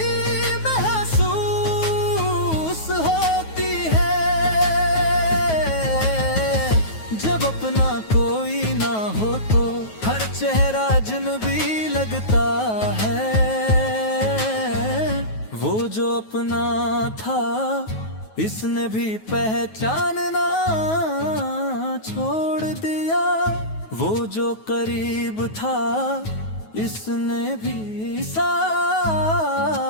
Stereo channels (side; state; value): right; late; 9.3 ms